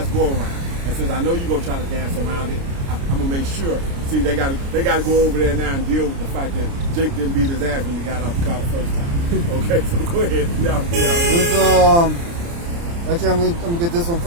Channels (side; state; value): left; late; 29 ms